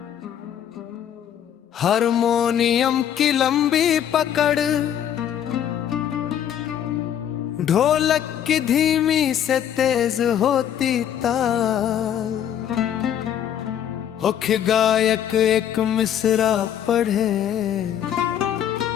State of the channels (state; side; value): quieter; right; 9.9 dB